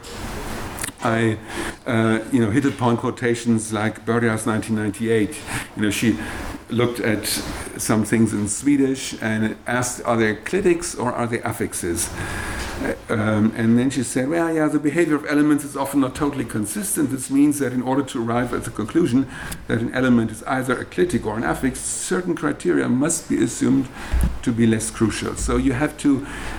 I hit upon quotations like Börja's 1998. She looked at some things in Swedish and asked, are they clitics or are they affixes? And then she said, well, yeah, the behavior of elements is often not totally consistent. This means that in order to arrive at the conclusion that an element is either a clitic or an affix, certain criteria must be assumed to be less crucial. So you have to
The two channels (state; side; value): identical; both; correlation 1.00